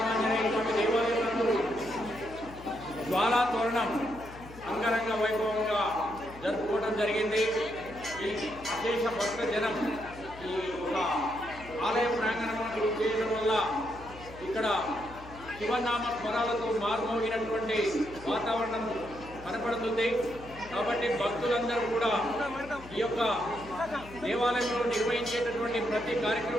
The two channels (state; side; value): noise; left; hum, 17 dB below the sound